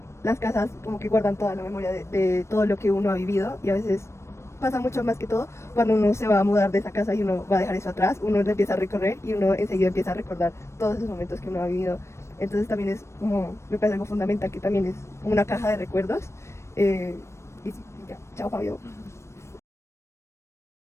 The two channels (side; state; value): right; late; 0.13 ms